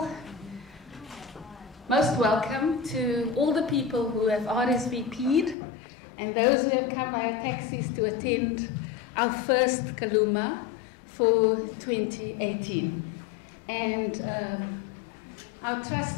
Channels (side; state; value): right; drops out; at 5.6 s